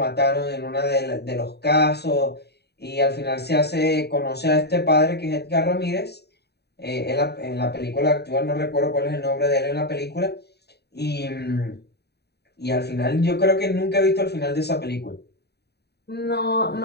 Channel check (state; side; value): late; right; 0.48 ms